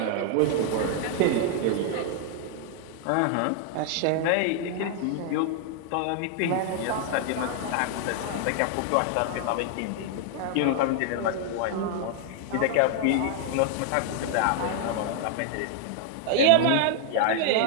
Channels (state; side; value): different; both; correlation 0.00